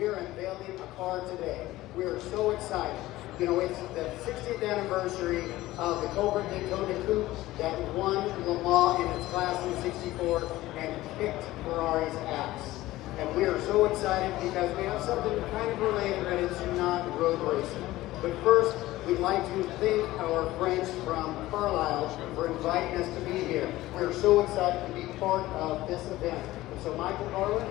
are unveiling a car today. We are so excited. You know, it's the 60th anniversary of the Cobra Daytona Coupe that won Le Mans in its class in '64 and kicked Ferrari's ass. And we are so excited because we have something kind of related, but it's not road racing. But first, we'd like to thank our friends from Carlisle for inviting us to be here. We're so excited to be part of this event. And so, Michael Carlin,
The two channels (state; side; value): quieter; right; 16.9 dB